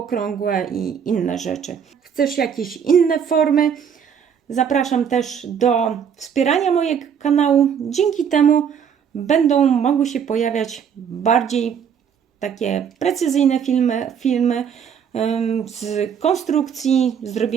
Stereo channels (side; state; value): left; quieter; 7.7 dB